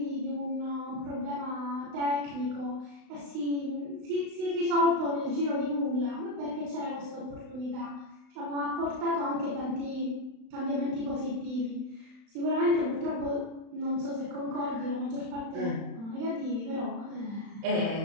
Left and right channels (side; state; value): left; late; 35 ms